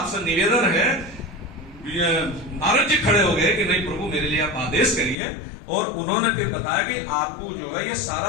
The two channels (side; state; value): right; drops out; at 5.2 s